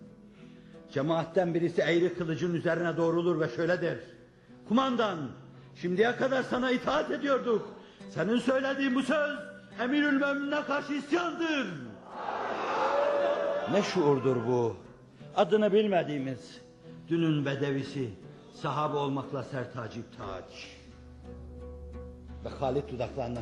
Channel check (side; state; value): both; identical; correlation 1.00